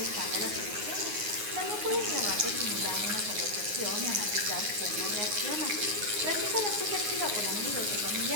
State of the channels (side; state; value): left; late; 9.6 ms